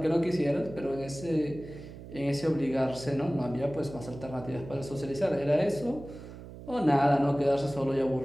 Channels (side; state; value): right; noise; hum, 14 dB below the sound